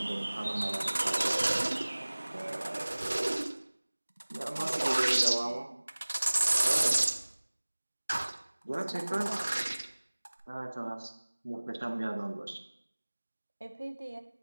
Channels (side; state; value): both; inverted; correlation -1.00